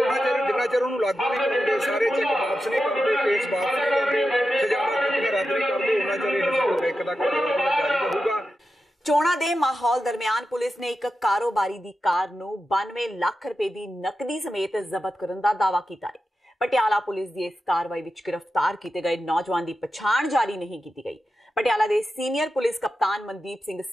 ਚਿਰ ਜਿੰਨਾ ਚਿਰ ਉਹਨੂੰ ਲਾਗੂ ਨਹੀਂ ਕਰਦੇ, ਸਾਰੇ ਚੈੱਕ ਵਾਪਸ ਨਹੀਂ ਕਰਦੇ, ਕੇਸ ਵਾਪਸ ਨਹੀਂ ਕਰਦੇ, ਸਜ਼ਾਵਾਂ ਕੀਤੀਆਂ ਰੱਦ ਨਹੀਂ ਕਰਦੇ, ਉਹਨਾਂ ਚਿਰ ਇਹ ਬੈਂਕ ਦਾ ਘਰਾਓ ਜਾਰੀ ਰਹੂਗਾ। ਚੋਣਾਂ ਦੇ ਮਾਹੌਲ ਦਰਮਿਆਨ ਪੁਲਿਸ ਨੇ ਇੱਕ ਕਾਰੋਬਾਰੀ ਦੀ ਕਾਰ ਨੂੰ 92 ਲੱਖ ਰੁਪਏ ਦੀ ਨਕਦੀ ਸਮੇਤ ਜ਼ਬਤ ਕਰਨ ਦਾ ਦਾਅਵਾ ਕੀਤਾ ਹੈ। ਪਟਿਆਲਾ ਪੁਲਿਸ ਦੀ ਇਸ ਕਾਰਵਾਈ ਵਿੱਚ ਗ੍ਰਿਫਤਾਰ ਕੀਤੇ ਗਏ ਨੌਜਵਾਨ ਦੀ ਪਛਾਣ ਜਾਰੀ ਨਹੀਂ ਕੀਤੀ ਗਈ। ਪਟਿਆਲਾ ਦੇ ਸੀਨੀਅਰ ਪੁਲਿਸ ਕਪਤਾਨ ਮਨਦੀਪ ਸਿੰਘ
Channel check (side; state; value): both; normal; correlation 0.90